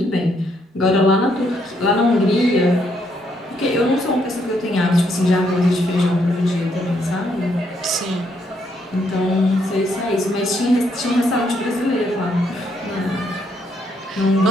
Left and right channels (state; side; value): normal; both; correlation 0.73